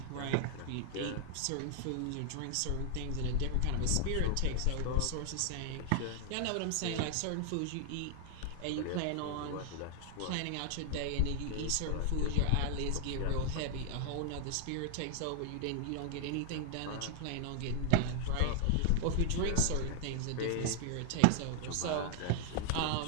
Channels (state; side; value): different; both; correlation 0.00